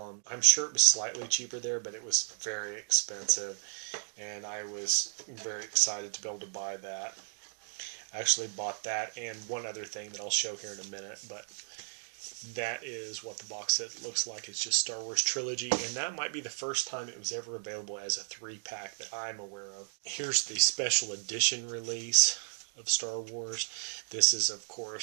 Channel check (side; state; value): left; silent; digital silence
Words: them. I'm sure it was slightly cheaper there, but it was very expensive. And I was very excited to be able to buy that. I actually bought that and one other thing that I'll show here in a minute, but that is what the box set looks like. It's just Star Wars Trilogy, and that might be the first time it was ever available as a 3-pack that I'm aware of. Here's the special edition release of Star Wars. This is, of